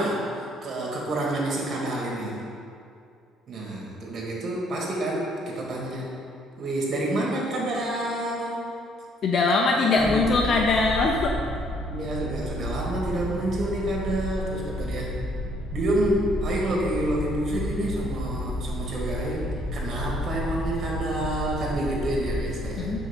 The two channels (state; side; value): normal; both; correlation 0.65